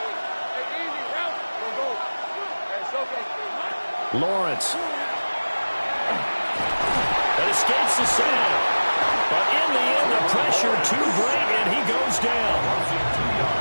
Lawrence. That escapes the sack. But in the end, the pressure too great, and he goes down.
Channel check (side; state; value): both; inverted; correlation -1.00